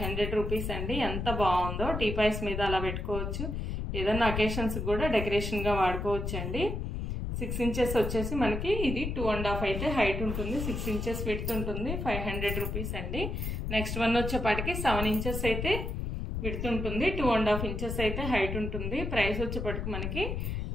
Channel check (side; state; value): left; noise; rumble, 3 dB below the sound